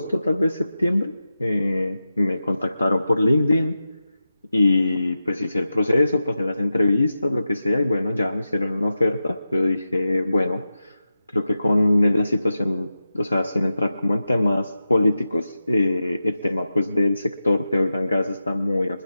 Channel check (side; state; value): both; inverted; correlation -0.92